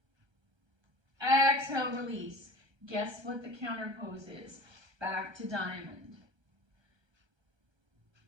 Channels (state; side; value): late; left; 1.3 ms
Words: Exhale, release. Guess what the counter pose is? Back to diamond.